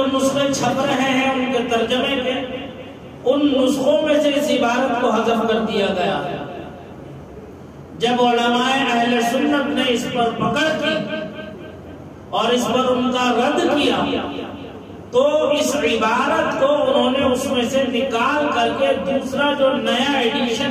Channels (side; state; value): both; identical; correlation 1.00